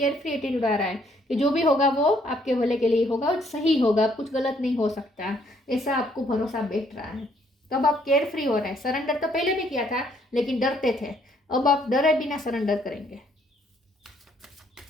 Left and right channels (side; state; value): both; normal; correlation 0.67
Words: फ्री एटीट्यूड आ रहा है कि जो भी होगा वो आपके भले के लिए होगा और सही होगा, अब कुछ गलत नहीं हो सकता, ऐसा आपको भरोसा बैठ रहा है। तब आप केयर फ्री हो रहे हैं। सरेंडर तो पहले भी किया था लेकिन डरते थे, अब आप डरे बिना सरेंडर करेंगे।